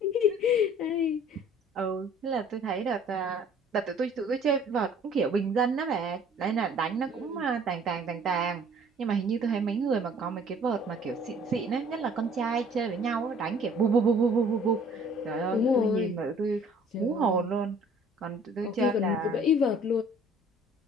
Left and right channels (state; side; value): normal; both; correlation 0.54